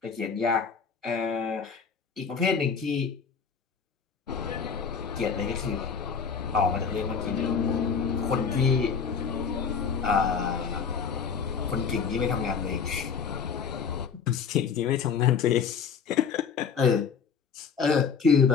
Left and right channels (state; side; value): quieter; right; 6.2 dB